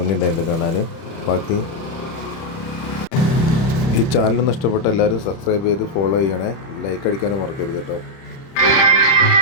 കാണാൻ. ബാക്കി ഈ ചാനലൊന്നും ഇഷ്ടപ്പെട്ട എല്ലാവരും സബ്സ്ക്രൈബ് ചെയ്ത് ഫോളോ ചെയ്യണേ. ലൈക്ക് അടിക്കാനും മറക്കരുത് കേട്ടോ.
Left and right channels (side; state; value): right; late; 30 ms